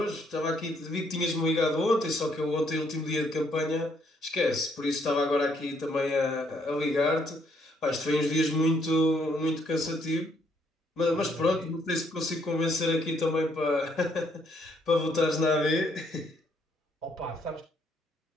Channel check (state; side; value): normal; both; correlation 0.70